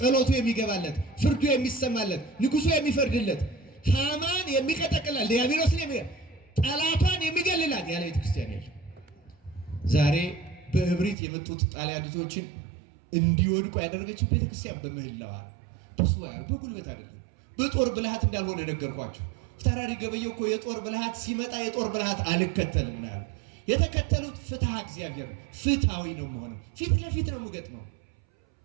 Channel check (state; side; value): drops out; left; at 11.2 s